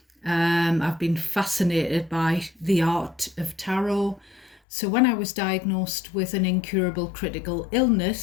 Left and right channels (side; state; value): right; drops out; at 4.5 s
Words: I've been fascinated by the art of tarot. So when I was diagnosed with an incurable critical